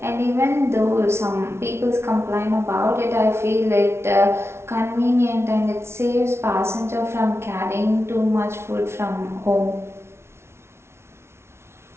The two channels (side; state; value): left; late; 0.12 ms